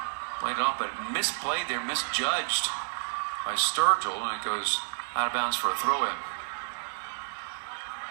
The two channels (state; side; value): silent; left; 58 dB below the other